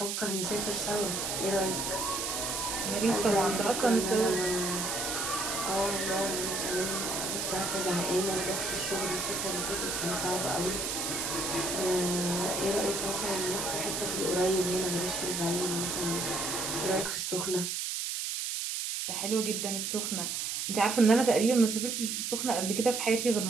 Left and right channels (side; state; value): right; noise; hiss, 2 dB below the sound